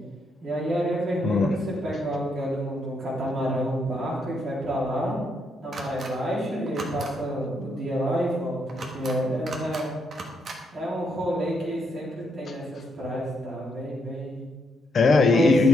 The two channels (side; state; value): both; normal; correlation 0.77